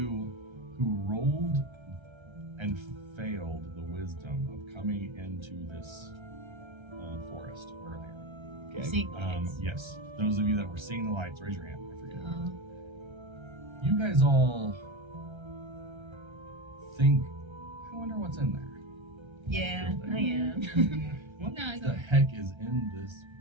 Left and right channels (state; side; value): late; left; 1.3 ms